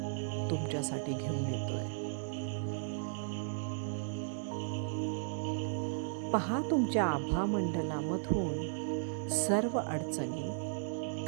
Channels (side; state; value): left; silent; digital silence